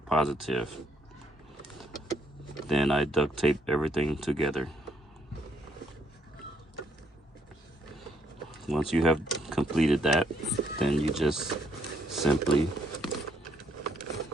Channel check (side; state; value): both; normal; correlation 0.71